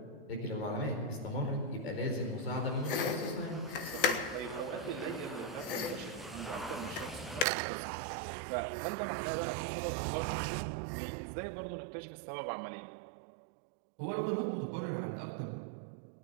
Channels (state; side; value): drops out; left; at 7.5 s